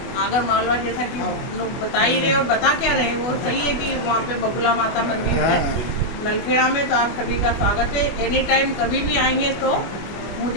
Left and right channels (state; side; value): late; right; 24 ms